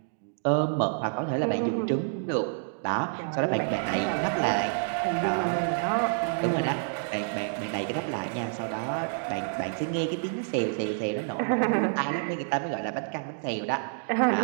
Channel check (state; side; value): silent; left; digital silence